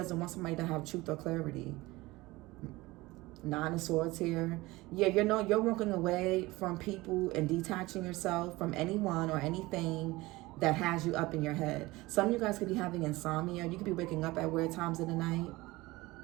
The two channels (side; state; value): left; quieter; 20.5 dB